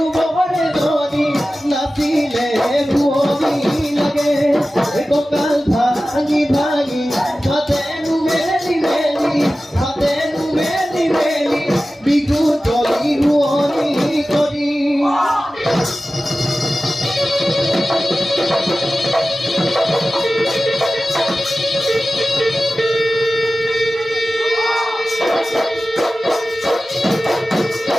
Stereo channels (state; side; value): normal; both; correlation 0.95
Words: বহরে ধনী নাচিলে ভুয়নি লাগে ককাল ভাঙি ভাঙি হাতেনু মেলি মেলি হাতেনু মেলি মেলি বিহু তলি ভুয়নি করি